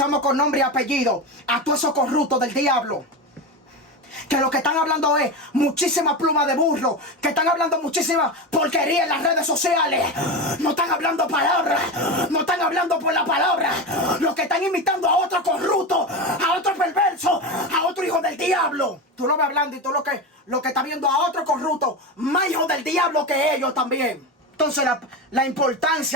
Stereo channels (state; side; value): normal; both; correlation 0.20